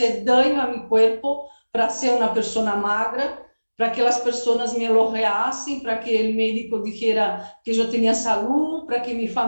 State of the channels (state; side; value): inverted; both; correlation -1.00